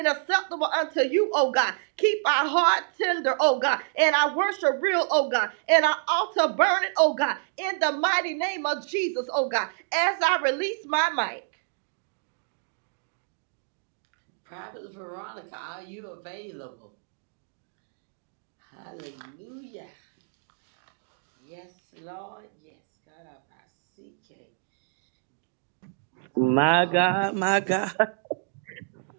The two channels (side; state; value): left; silent; digital silence